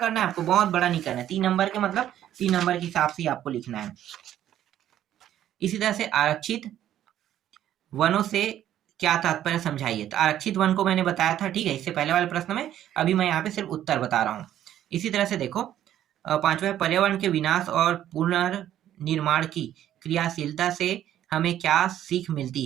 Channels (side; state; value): left; quieter; 11.6 dB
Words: है आपको, बहुत बड़ा नहीं करना है। 3 नंबर के मतलब 3 नंबर के हिसाब से आपको लिखना है। इसी तरह से आरक्षित वनों से क्या तात्पर्य समझाइए। तो आरक्षित वन को मैंने बताया था, ठीक है, इससे पहले वाले प्रश्न में। अभी मैं यहाँ पे सिर्फ उत्तर बता रहा हूँ। इसी तरह से देखो 5वां है पर्यावरण के विनाश और पुनर्निर्माण की क्रियाशीलता से हमें क्या सीख मिलती